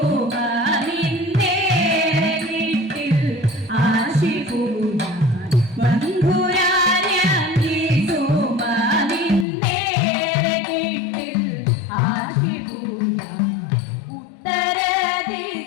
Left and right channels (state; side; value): drops out; right; at 9.5 s